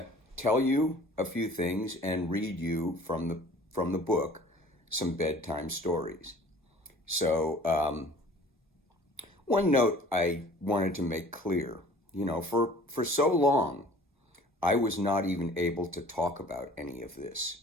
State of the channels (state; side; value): normal; both; correlation 0.49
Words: tell you a few things and read you from the book some bedtime stories. So, one note I wanted to make clear, for so long, I was not even able to talk about any of this.